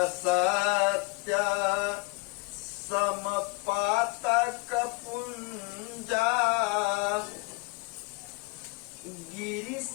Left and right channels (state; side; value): quieter; right; 27.8 dB